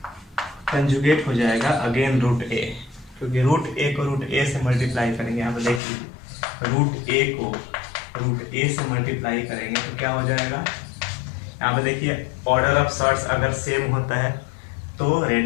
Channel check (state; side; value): drops out; right; at 5.8 s